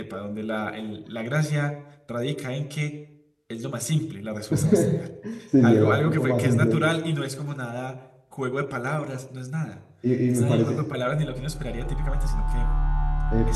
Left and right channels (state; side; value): identical; both; correlation 1.00